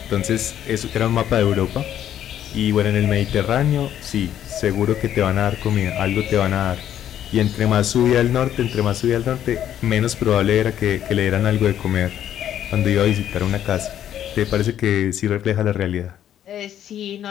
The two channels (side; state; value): right; quieter; 10.7 dB